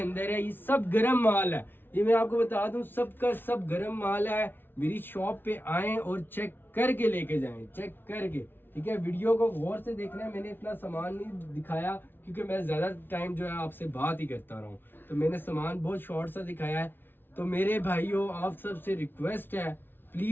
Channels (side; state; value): right; late; 0.10 ms